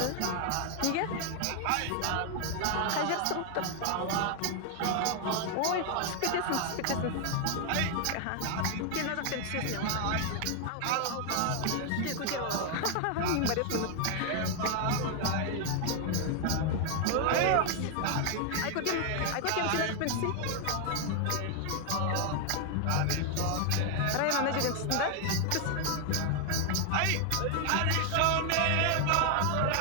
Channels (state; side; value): different; both; correlation 0.00